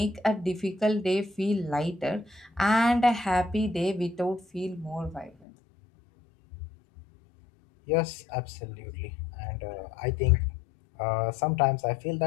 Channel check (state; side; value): drops out; right; at 5.3 s